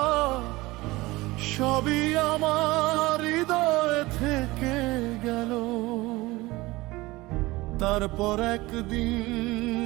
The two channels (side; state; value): left; quieter; 20.5 dB